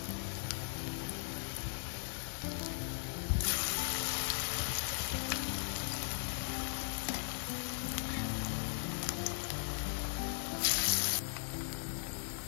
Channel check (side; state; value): right; silent; digital silence